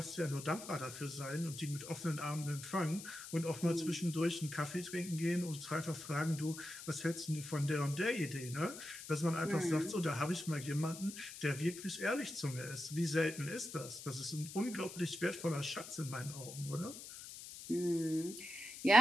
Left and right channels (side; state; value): left; noise; hiss, 12 dB below the sound